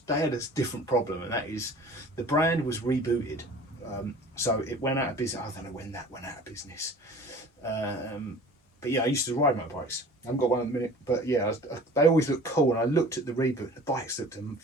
different problem, and that is the brand was rebooted, so it went out of business. I don't know when that went out of business, but yeah, I used to ride motorbikes. I haven't got one at the minute, but yeah, they always look cool. And I looked at the reboot, the bikes looked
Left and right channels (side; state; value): both; normal; correlation 0.44